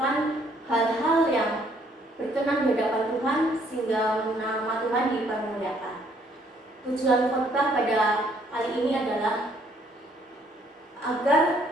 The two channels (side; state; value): both; normal; correlation 0.65